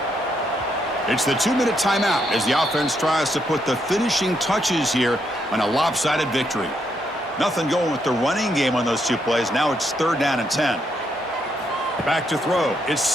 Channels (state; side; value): normal; both; correlation 0.77